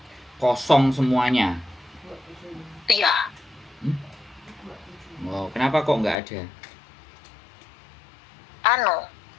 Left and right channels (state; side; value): drops out; right; at 6.2 s